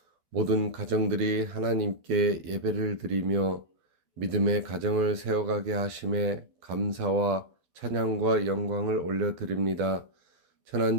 모든 가정들이 하나님께 예배를 드리며 믿음의 가정을 세워가게 하심에 감사와 찬양과 영광을 올려드립니다.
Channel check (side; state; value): left; late; 12 ms